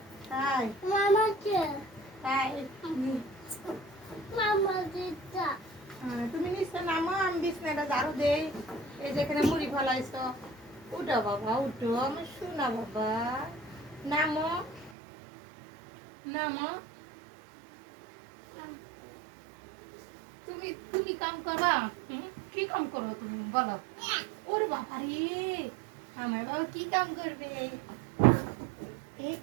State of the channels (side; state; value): left; drops out; at 14.9 s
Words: তাই তাই তুমি নিচে নামো, আমি বিছনাটা ঝাড়ু দেই। এই যেখানে মুড়ি ফলাইছো, উঠো বাবা উঠো, আমার শোনা বাবা, নামো নামো। তুমি তুমি কাম করবা, কি কাম করো তুমি বলো? ওরে বাবা রে, আমার বাবা কি কাম করবে? এই